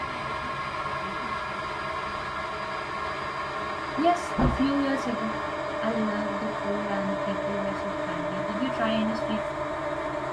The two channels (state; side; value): identical; both; correlation 1.00